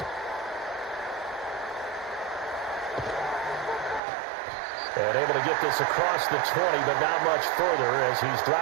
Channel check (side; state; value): left; drops out; at 4.0 s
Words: And able to get this across the 20, but not much further as he's